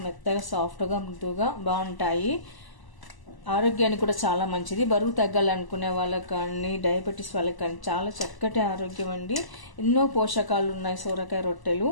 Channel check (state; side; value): late; right; 1.0 ms